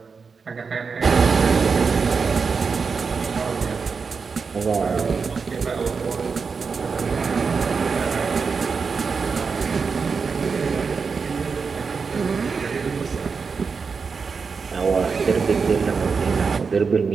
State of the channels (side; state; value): left; quieter; 5.2 dB